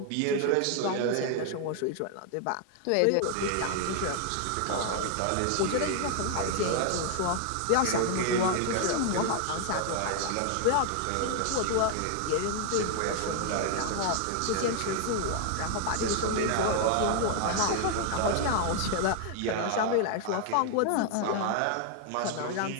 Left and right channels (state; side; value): different; both; correlation 0.00